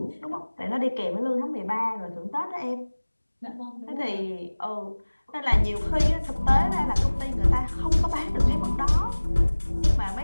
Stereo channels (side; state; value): both; inverted; correlation -1.00